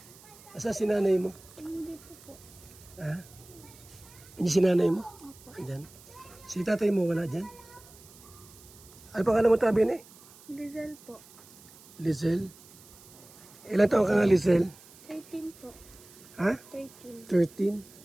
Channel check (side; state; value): right; noise; hiss, 22 dB below the sound